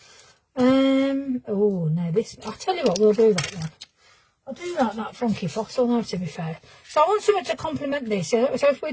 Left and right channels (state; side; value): identical; both; correlation 1.00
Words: Oh, no, this, I'll tell you what, we'll do that one. I'll do that funky fossil now, to be fair. So I want something to complement this. So if